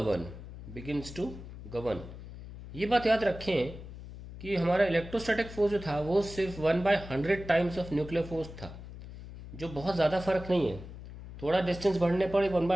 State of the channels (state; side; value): noise; left; hum, 13 dB below the sound